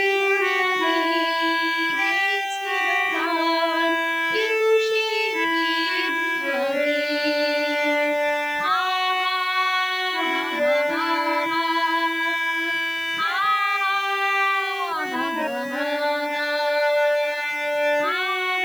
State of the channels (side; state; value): right; noise; hiss, 22 dB below the sound